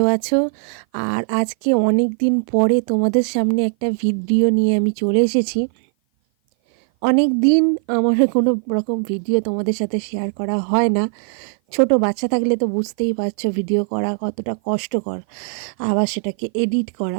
আছো। আর আজকে অনেক দিন পরে তোমাদের সামনে একটা ভিডিও নিয়ে আমি চলে এসেছি। অনেক দিন আমার কোনো রকম ভিডিও তোমাদের সাথে শেয়ার করা হয় না। ছোট বাচ্চা থাকলে তো বুঝতেই পারছো ভিডিও করা কতটা কষ্টকর, আবার সেটাকে এডিট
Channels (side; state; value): left; silent; 56 dB below the other